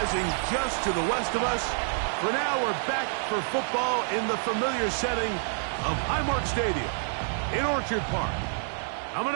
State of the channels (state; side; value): silent; left; digital silence